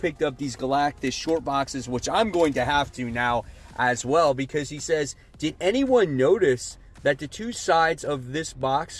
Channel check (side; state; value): both; identical; correlation 1.00